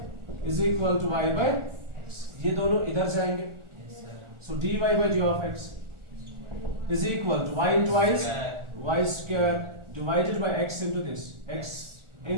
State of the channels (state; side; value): late; left; 1.4 ms